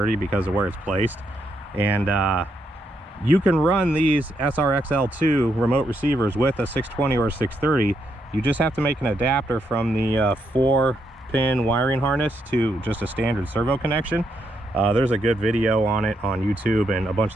because of where it's placed. And you can run these SRXL2 remote receivers with a 620 or a 630. You just have to make an adapter from the 4-pin wiring harness to just a standard servo connection. There's a good video on it on YouTube, and a bunch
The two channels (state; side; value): normal; both; correlation 0.78